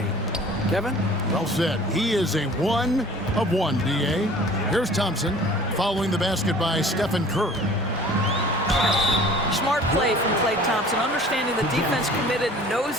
Kevin? Well said. He is a 1 of 1, D.A. Here's Thompson following the basket by Stephen Curry. Smart play from Klay Thompson, understanding the defense committed, knows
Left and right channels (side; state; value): both; normal; correlation 0.47